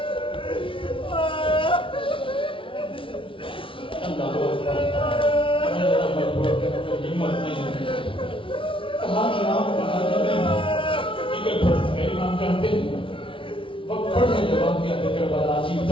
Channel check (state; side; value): late; right; 0.25 ms